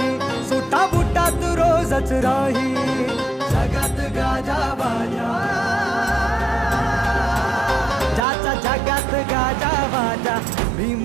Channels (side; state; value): left; drops out; at 8.2 s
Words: सुटा बुटात रोजच राही. जगात गाजा बाजा, ज्याचा जगात गाजा बाजा,